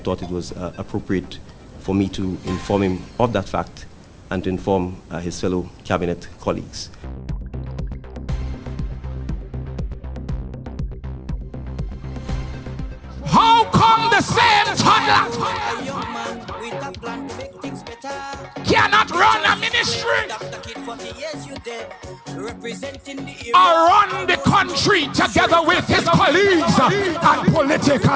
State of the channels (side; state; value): both; identical; correlation 1.00